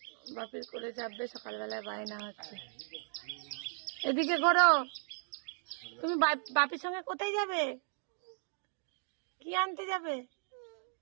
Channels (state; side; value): silent; left; 54 dB below the other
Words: বাপির করে যাবে, সকালবেলায় বায়না হচ্ছে। এদিকে করো। তুমি বাপির সঙ্গে কোথায় যাবে? কি আনতে যাবে?